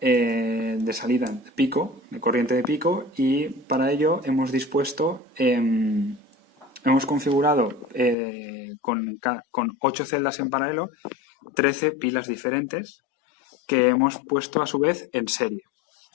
de salida de pico, de corriente de pico, y para ello hemos configurado con 8 celdas en paralelo 13 pilas diferentes que hemos puesto a su vez en serie,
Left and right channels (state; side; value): drops out; right; at 8.2 s